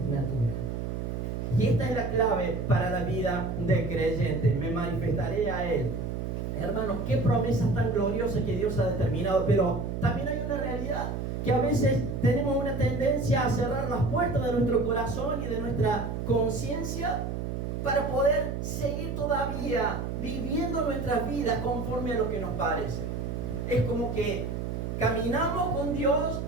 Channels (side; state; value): right; noise; hum, 4 dB below the sound